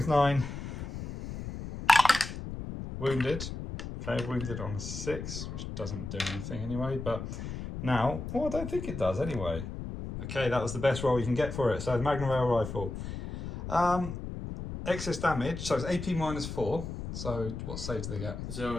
9, wounded. Okay, wounded on a 6, which doesn't do anything anyway, but now, well, I don't think it does anyway. Okay, that was the best roll you can get for it. So the Magna rail rifle. Excess damage, so it's AP -4. So what save do they get?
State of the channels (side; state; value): left; noise; rumble, 7 dB below the sound